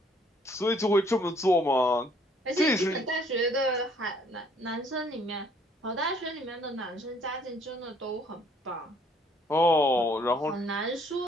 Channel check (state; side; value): normal; both; correlation 0.62